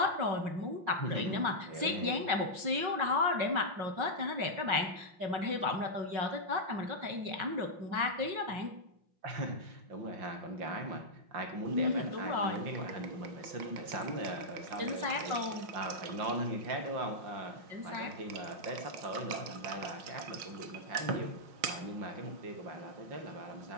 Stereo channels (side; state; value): left; late; 5.6 ms